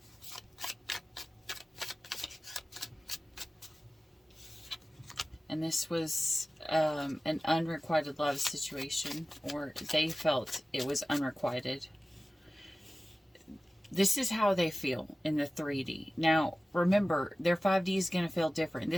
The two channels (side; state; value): both; normal; correlation 0.97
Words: And this was an unrequited love situation, or they felt it was unrequited. This is how they feel in the 3D. Now, remember, their 5D is going to feel different.